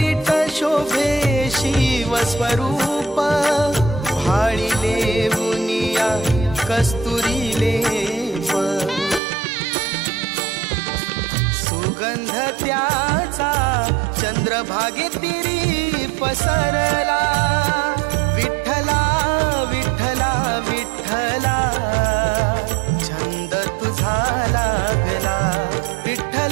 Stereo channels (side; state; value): left; drops out; at 9.2 s